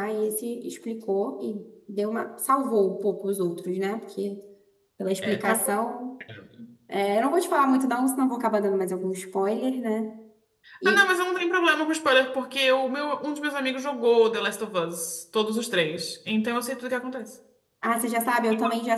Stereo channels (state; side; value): identical; both; correlation 1.00